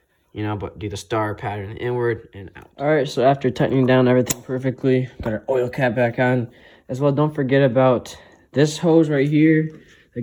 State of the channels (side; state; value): both; identical; correlation 1.00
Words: you know, but do the star pattern inward and out. All right, so after tightening down everything perfectly, got our oil cap back on as well. Don't forget about this hose right here that